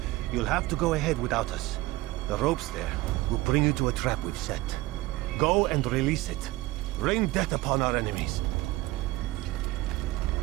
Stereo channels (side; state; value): left; quieter; 18.7 dB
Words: You'll have to go ahead without us. The ropes there will bring you to a trap we've set. Go and release it. Rain death upon our enemies.